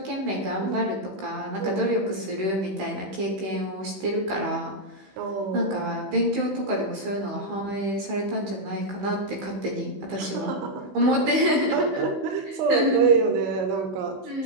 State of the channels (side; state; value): left; late; 15 ms